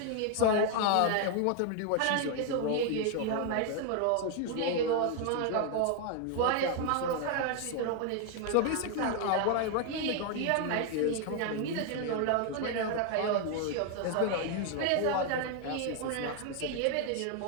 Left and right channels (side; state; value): both; different; correlation 0.00